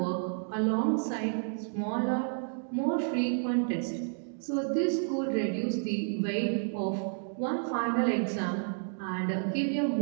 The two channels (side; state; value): left; silent; digital silence